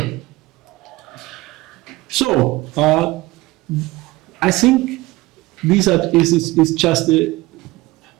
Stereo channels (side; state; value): left; quieter; 20.0 dB